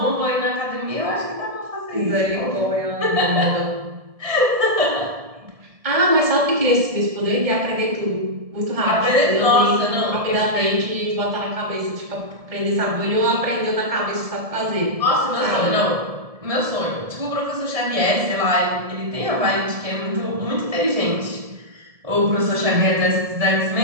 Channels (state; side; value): late; left; 1.7 ms